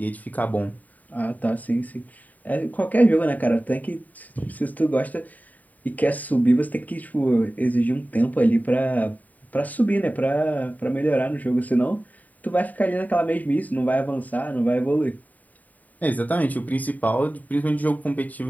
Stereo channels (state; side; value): late; right; 0.076 ms